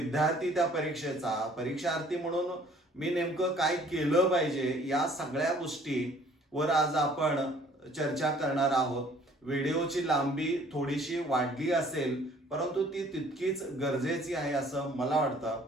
त्या परीक्षेचा परीक्षार्थी म्हणून मी नेमकं काय केलं पाहिजे या सगळ्या गोष्टीवर आज आपण चर्चा करणार आहोत. व्हिडिओची लांबी थोडीशी वाढली असेल परंतु ती तितकीच गरजेची आहे असं मला वाटतं.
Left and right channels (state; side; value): normal; both; correlation 0.56